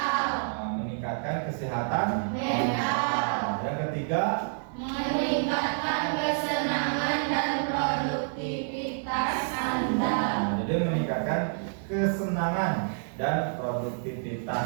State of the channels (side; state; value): left; silent; digital silence